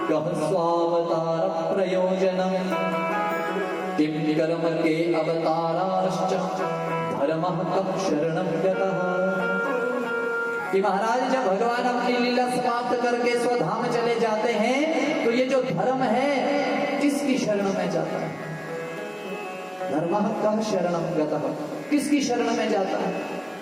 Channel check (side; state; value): both; identical; correlation 1.00